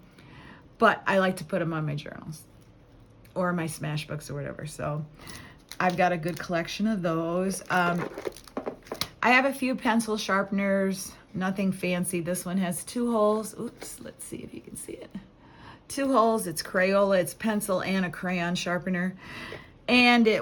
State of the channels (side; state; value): both; identical; correlation 1.00